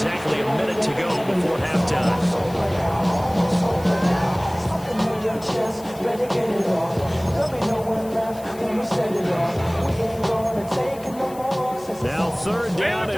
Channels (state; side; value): noise; left; hiss, 20 dB below the sound